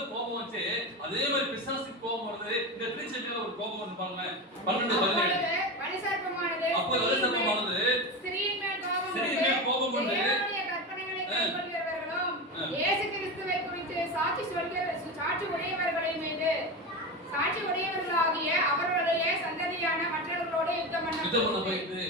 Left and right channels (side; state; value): both; normal; correlation 0.21